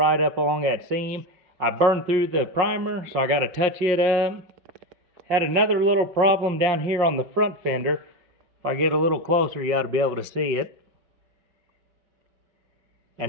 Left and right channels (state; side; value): late; left; 5.7 ms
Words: up along that seam. I burned through the primer, so I got to touch it up. Had another little problem down here on the front fender. If I get a little closer, you ought to be able to see it.